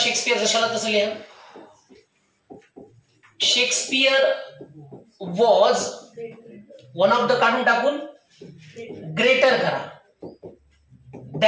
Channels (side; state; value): both; identical; correlation 1.00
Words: जशाला तसं लिहा. Shakespeare was one of the काढून टाकून ग्रेटर करा